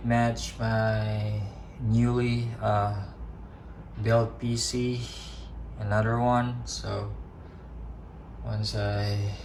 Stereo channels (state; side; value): identical; both; correlation 1.00